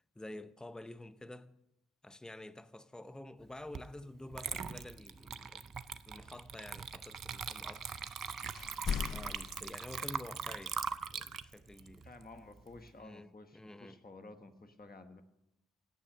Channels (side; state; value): both; normal; correlation 0.73